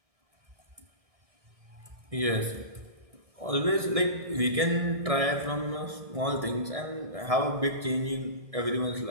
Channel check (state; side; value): late; left; 1.6 ms